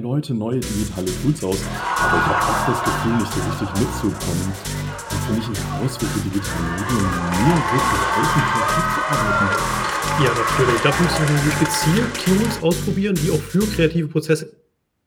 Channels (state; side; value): identical; both; correlation 1.00